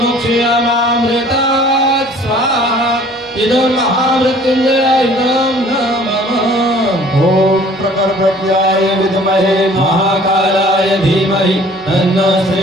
स्वाहा इदं महामृत्युंजय इदं नमः। ओम प्रकटव्याय विद्महे महाकालाय धीमहि तन्नो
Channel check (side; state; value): both; normal; correlation 0.52